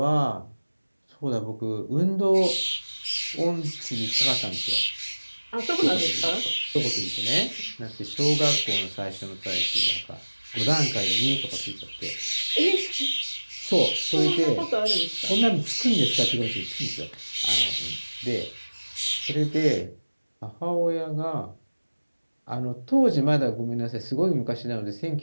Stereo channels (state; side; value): inverted; both; correlation -1.00